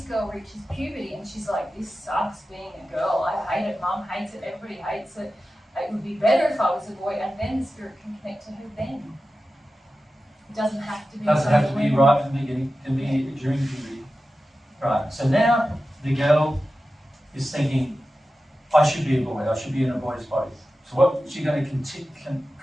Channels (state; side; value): normal; both; correlation 0.93